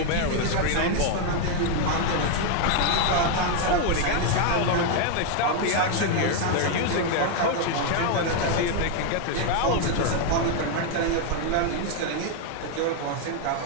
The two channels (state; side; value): different; both; correlation 0.01